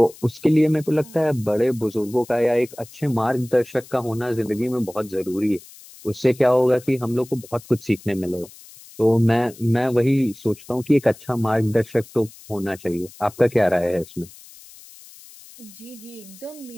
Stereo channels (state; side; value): noise; left; hiss, 21 dB below the sound